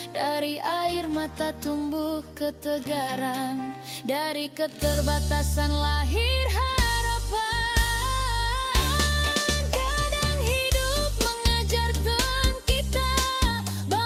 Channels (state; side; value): identical; both; correlation 1.00